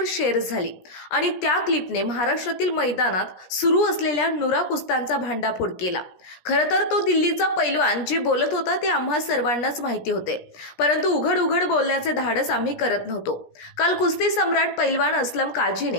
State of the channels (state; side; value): late; right; 17 ms